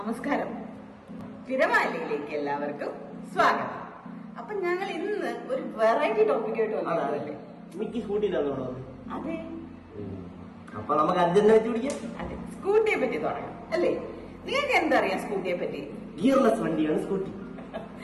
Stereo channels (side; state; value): both; identical; correlation 1.00